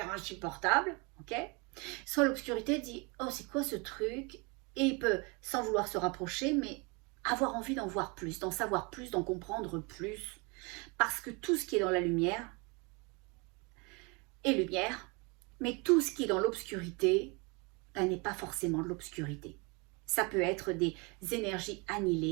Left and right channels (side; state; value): left; quieter; 29.6 dB